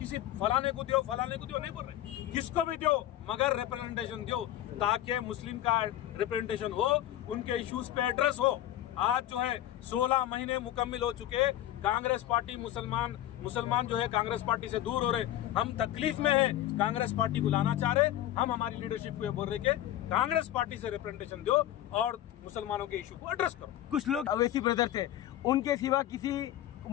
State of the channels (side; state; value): right; quieter; 12.9 dB